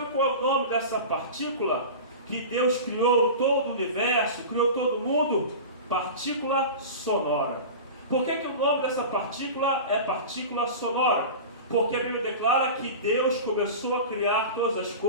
qual é o nome dessa partícula? Que Deus criou todo o universo, criou todo o mundo? Partícula sonora. Por que o nome dessa partícula é partícula sonora? Porque a Bíblia declara que Deus começou a criar todas as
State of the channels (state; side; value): inverted; both; correlation -0.31